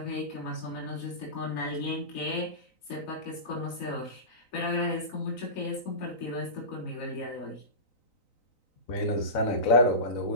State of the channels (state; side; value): late; right; 3.9 ms